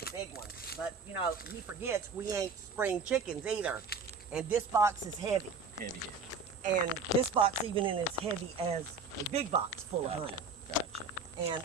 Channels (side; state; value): left; quieter; 4.6 dB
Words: big ones. But, you know, he forgets we ain't spring chickens either. And this box is heavy. Heavy. And this box even is as heavy as the big box full of honey. Gotcha.